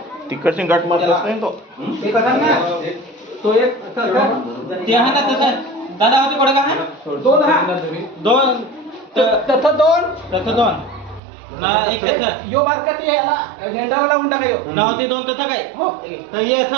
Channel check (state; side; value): drops out; left; at 11.2 s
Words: तिकडची गाठ मारलाच नाही तो. ते कसा ना तो एक ते आहे ना तसं दादा होते कोडे का आहे दोन हा दोन तसं दोन ना एक तसं यो बारका ती याला झेंडाला लावून टाका यो ना होते दोन तसं काय हो तर हे